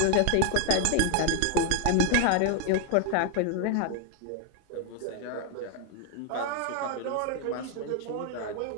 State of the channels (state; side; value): different; both; correlation 0.00